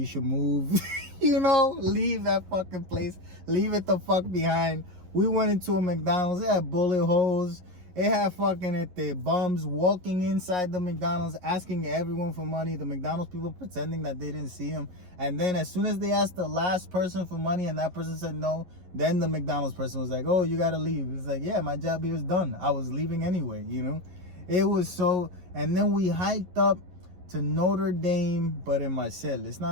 should move. You know, leave that fucking place. Leave it the fuck behind. We went into a McDonald's. It had bullet holes. It had fucking bums walking inside the McDonald's asking everyone for money. The McDonald's people pretending that they didn't see him. And then as soon as they asked the last person for money and that person said no, then the McDonald's person was like, oh, you gotta leave. It's like, yeah, my job here is done. I was leaving anyway, you know? It was so... And then we hiked up to Notre Dame, but in Marseille. It's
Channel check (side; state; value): left; late; 11 ms